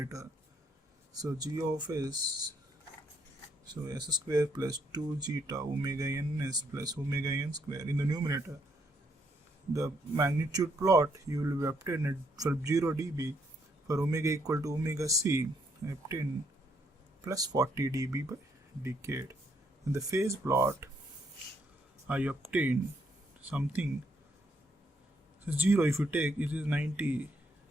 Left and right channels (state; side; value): normal; both; correlation 0.73